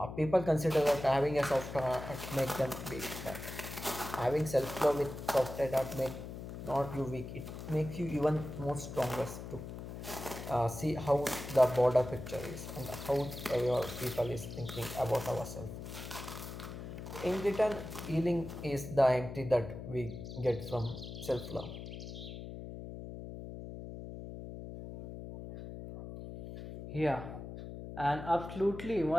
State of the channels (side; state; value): left; noise; hum, 9 dB below the sound